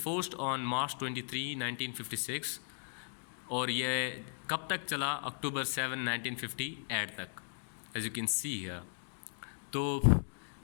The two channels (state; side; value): silent; right; digital silence